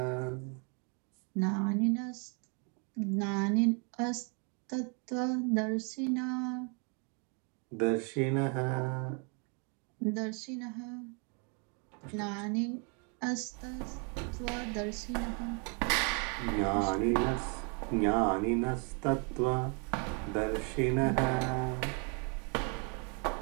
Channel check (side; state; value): left; quieter; 36.5 dB